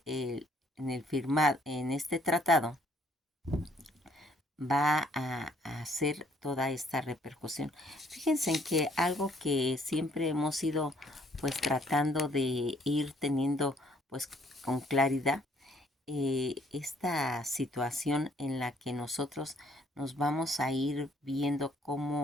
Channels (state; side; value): normal; both; correlation 0.64